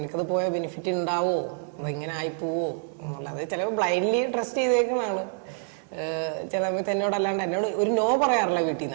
പോയാൽ ബെനിഫിറ്റ് ഉണ്ടാവോ, ഇങ്ങനെ ആയിപ്പോവോ എന്നുള്ളത് ചിലപ്പോൾ ബ്ലൈൻഡ്ലി ട്രസ്റ്റ് ചെയ്തേക്കുന്നതാണ്. ചില സമയത്ത് എന്നോട് ഒരു നോ പറയാറില്ല വീട്ടിൽ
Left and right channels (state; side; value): silent; left; 60 dB below the other